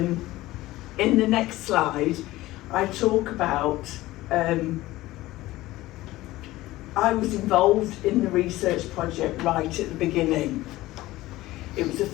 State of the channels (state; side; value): quieter; right; 17.5 dB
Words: in the next slide, I talk about, I was involved in the research project right at the beginning. It was a